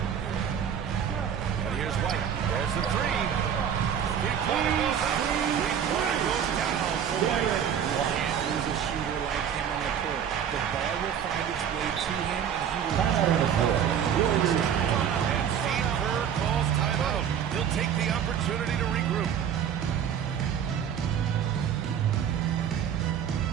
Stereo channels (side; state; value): left; quieter; 8.5 dB